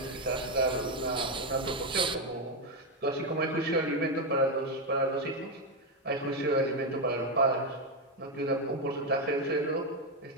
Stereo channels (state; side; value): normal; both; correlation 0.07